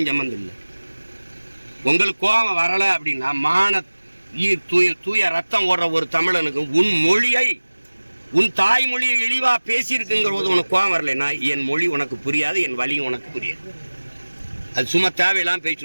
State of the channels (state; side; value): inverted; both; correlation -1.00